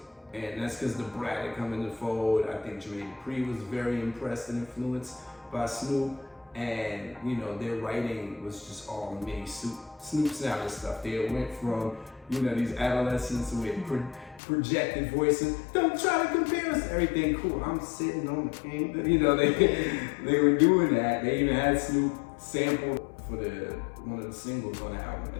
And that's because the Brat had come in the fold. I think Jermaine Dupri was very impressed and influenced by Snoop. And, you know, their writing was just all mini Snoop sounding stuff. They went from, you know, these adolescents with projected voices. Don't try to compare us to everything. Cool, I'm sitting on the king. You know, they were doing that. They even had Snoop sample for one of the singles on the album.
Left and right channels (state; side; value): drops out; right; at 14.4 s